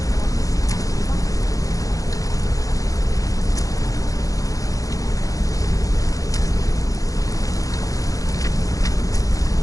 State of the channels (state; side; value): late; right; 0.17 ms